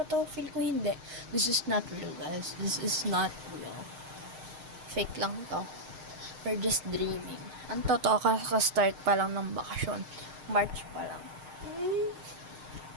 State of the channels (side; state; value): left; late; 6.5 ms